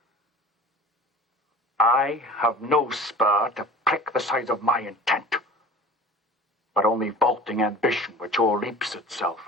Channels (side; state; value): both; normal; correlation 0.41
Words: I have no spur to prick the size of my intent, but only vaulting ambition which o'erleaps itself